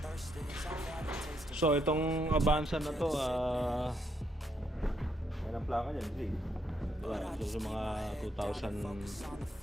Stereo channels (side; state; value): both; normal; correlation 0.76